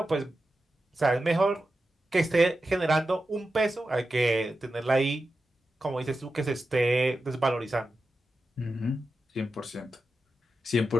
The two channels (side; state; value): both; normal; correlation 0.91